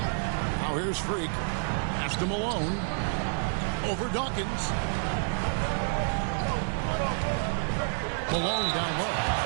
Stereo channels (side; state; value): left; silent; 59 dB below the other